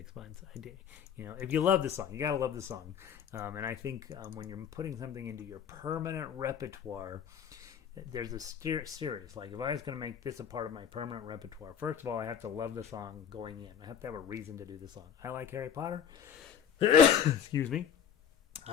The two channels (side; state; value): right; quieter; 8.1 dB